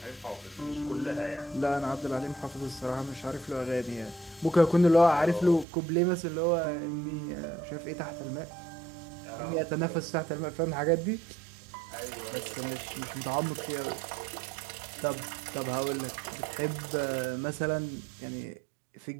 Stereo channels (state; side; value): drops out; left; at 5.7 s